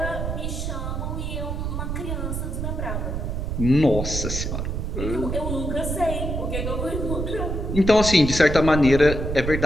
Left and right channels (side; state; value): right; noise; rumble, 3 dB below the sound